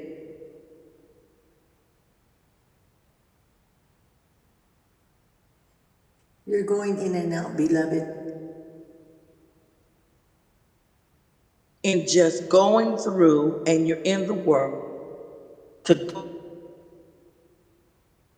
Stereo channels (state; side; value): identical; both; correlation 1.00